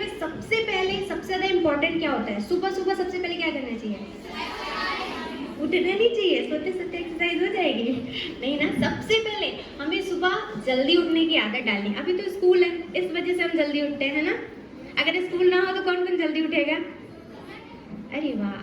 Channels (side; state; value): both; identical; correlation 1.00